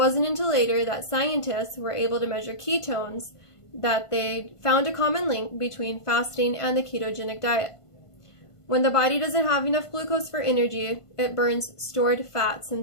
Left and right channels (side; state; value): right; late; 1.5 ms